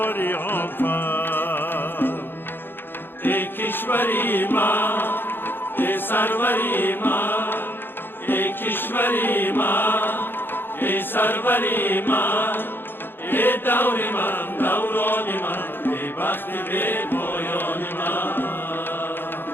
فر. ای کشوری من، ای سروری من، ای کشوری من، ای سروری من، ای دور من، دوران من، ای بخت به پایان من.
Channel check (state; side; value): late; right; 0.10 ms